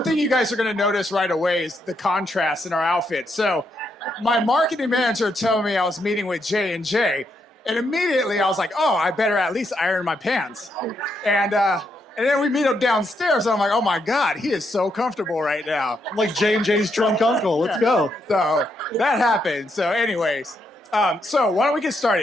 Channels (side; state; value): both; normal; correlation 0.79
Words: thing you guys are going to notice right away is the contrast in our outfits. So my marketing manager told me I was meeting with J&J, and immediately I was like, oh, I better at least iron my pants. And then we meet up downstairs, and I'm like, oh my God, he is so comfortable right now. Like J&J's drunk uncle. Let's go. So that happened. So anyways, so why don't we get